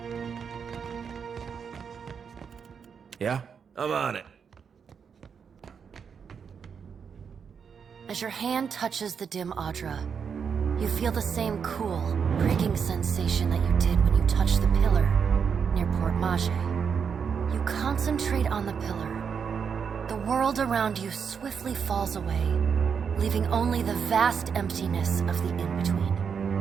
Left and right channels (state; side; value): quieter; left; 6.6 dB